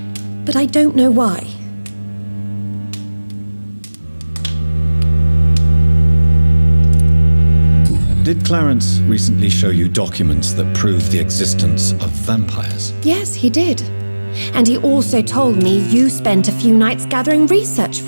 but I don't know why. Did Clarence recently show you documents that prove the existence of vampires? Yes, he did. And he also told me you spent a few nights gathering research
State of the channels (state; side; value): inverted; both; correlation -1.00